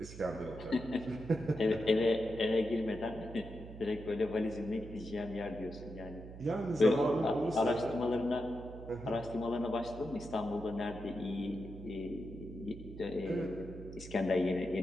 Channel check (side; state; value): right; noise; hum, 13 dB below the sound